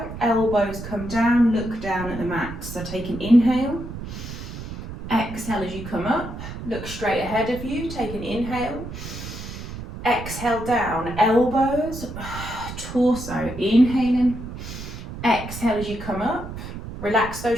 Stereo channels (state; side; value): noise; right; rumble, 10 dB below the sound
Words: elbows come down, look down at the mat. So take an inhale. Exhale as you come up. Look straight ahead of you. Take an inhale. Exhale down. Elbows, torso. Inhaling. Exhale as you come up. Relax